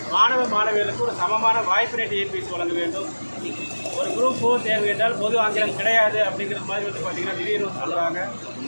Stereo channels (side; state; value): both; inverted; correlation -1.00